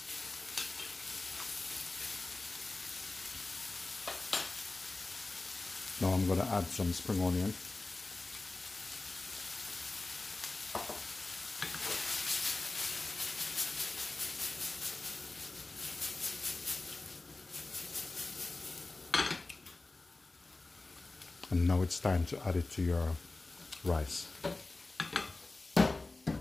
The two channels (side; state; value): right; quieter; 3.2 dB